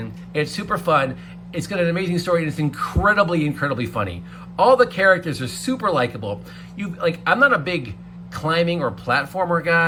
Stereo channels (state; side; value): identical; both; correlation 1.00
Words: It's super fun. It's got an amazing story and it's incredibly, incredibly funny. All the characters are super likable. I'm not a big climbing or platformer